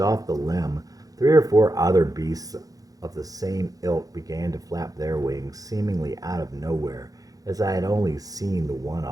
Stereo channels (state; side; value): late; left; 0.17 ms